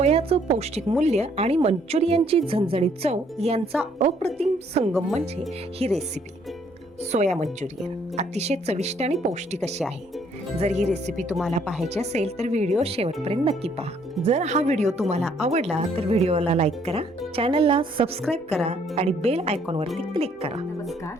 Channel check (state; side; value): normal; both; correlation 0.66